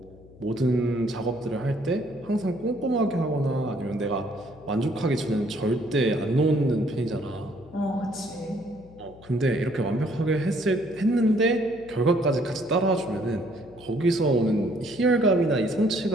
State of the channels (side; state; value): left; noise; hum, 23 dB below the sound